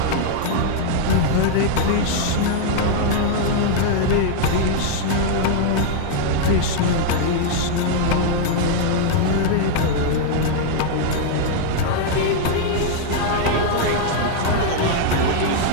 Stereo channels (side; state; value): both; different; correlation 0.00